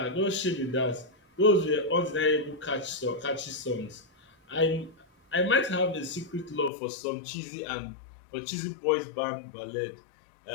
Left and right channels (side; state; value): right; drops out; at 6.7 s